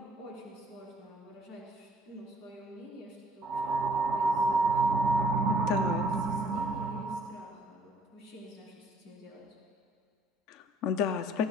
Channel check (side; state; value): both; normal; correlation 0.60